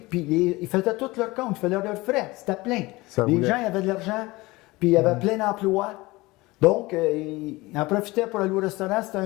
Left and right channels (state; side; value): quieter; right; 21.4 dB